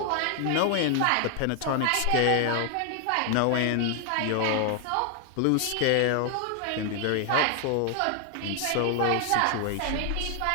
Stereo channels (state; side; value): different; both; correlation 0.00